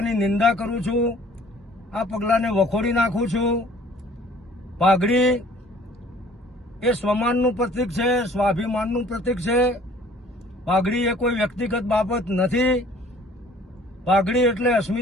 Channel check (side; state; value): both; normal; correlation 0.54